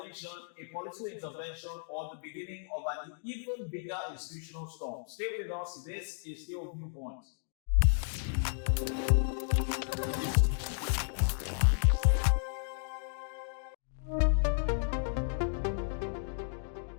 a political intervention, or the beginning of an even bigger institutional storm? Stay with us. This is still Viewpoint.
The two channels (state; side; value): silent; right; digital silence